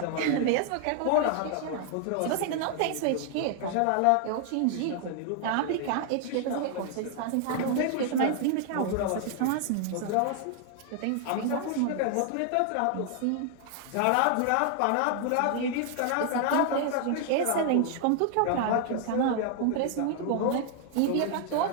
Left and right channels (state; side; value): different; both; correlation 0.00